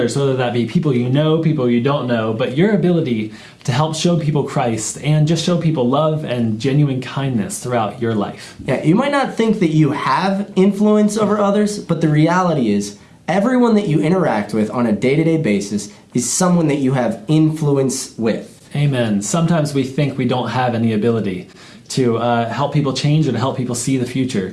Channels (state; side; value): identical; both; correlation 1.00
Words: whether that be people you know, people you don't know, but your ability to help show people Christ and just show people love and genuine kindness throughout your life. Yeah, you might not think that you have influence over others, but the reality is everyone that you interact with on a day-to-day basis is someone that you have influence with. Amen. Sometimes we think we don't have any ability to help people change or to help people see the